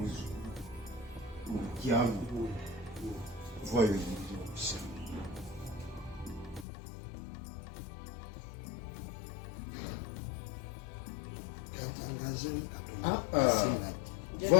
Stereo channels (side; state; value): right; drops out; at 6.7 s